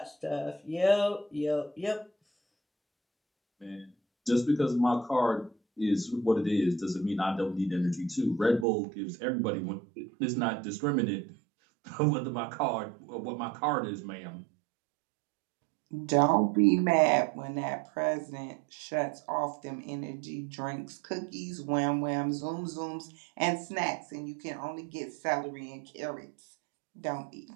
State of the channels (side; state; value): left; drops out; at 8.7 s